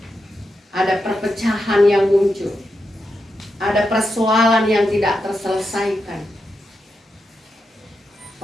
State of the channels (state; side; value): normal; both; correlation 0.86